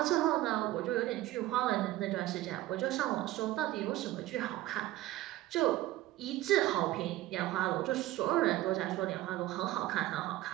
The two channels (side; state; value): left; quieter; 15.9 dB